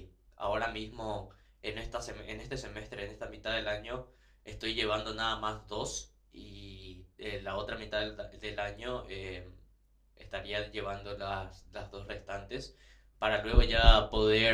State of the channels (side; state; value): both; identical; correlation 1.00